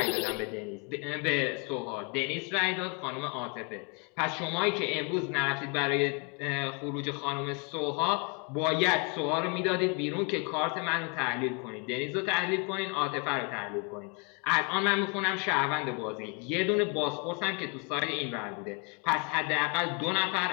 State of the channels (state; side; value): quieter; right; 33.0 dB